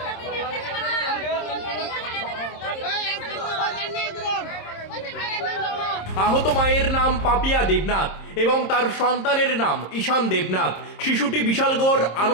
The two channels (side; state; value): right; late; 26 ms